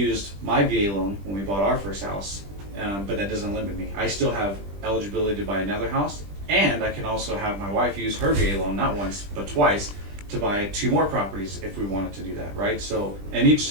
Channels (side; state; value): left; late; 20 ms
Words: my VA loan when we bought our first house, but that doesn't limit me. I still have eligibility to buy another house, and I can also have my wife use her VA loan, not once, but twice, to buy 2 more properties if we wanted to do that, right? So, and each